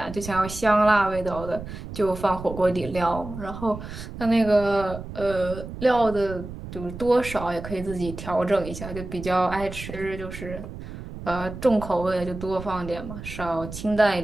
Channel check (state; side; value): noise; right; rumble, 11 dB below the sound